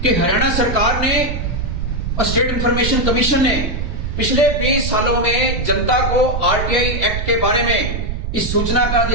कि हरियाणा सरकार ने और स्टेट इंफॉर्मेशन कमीशन ने पिछले 20 सालों में जनता को आरटीआई एक्ट के बारे में, इस सूचना का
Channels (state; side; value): noise; right; rumble, 3 dB below the sound